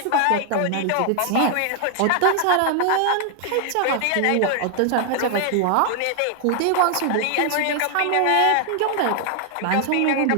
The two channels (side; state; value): both; different; correlation 0.00